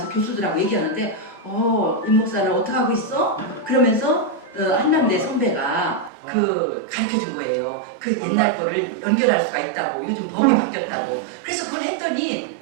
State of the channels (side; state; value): left; drops out; at 6.1 s